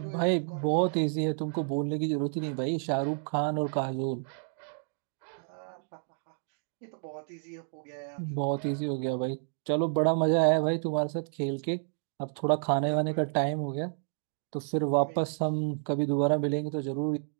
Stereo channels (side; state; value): left; silent; digital silence